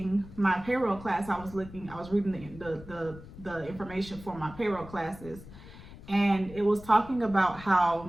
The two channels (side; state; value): left; noise; rumble, 16 dB below the sound